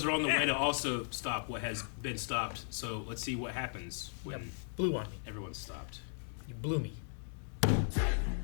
are on the way to also stop what has been stopped. So let's see what happens when Blew on me. everyone's stopped. You blew me.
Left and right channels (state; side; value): silent; right; 53 dB below the other